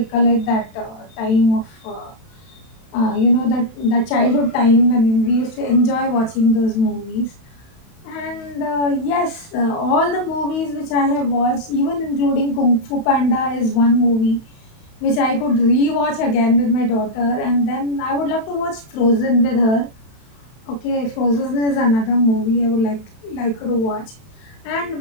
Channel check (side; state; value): right; late; 31 ms